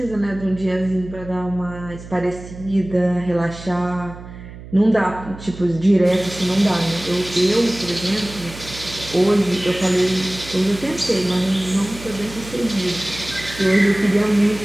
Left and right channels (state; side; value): noise; right; hum, 15 dB below the sound